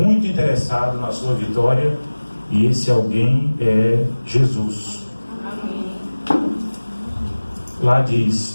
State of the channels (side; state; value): both; inverted; correlation -1.00